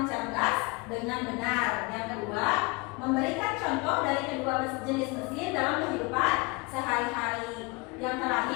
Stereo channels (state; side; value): quieter; right; 26.7 dB